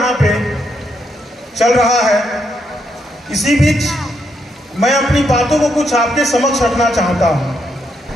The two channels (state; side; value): normal; both; correlation 0.78